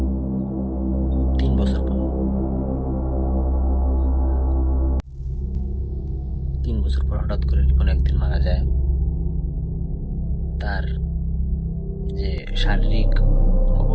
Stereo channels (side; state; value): both; identical; correlation 1.00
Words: 3 বছর পর। 3 বছর পর হঠাৎ করে রিপন একদিন মারা যায়। তার যে শারীরিক